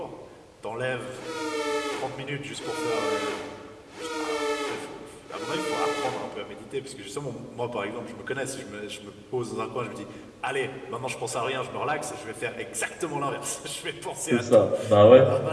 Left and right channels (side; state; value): both; identical; correlation 1.00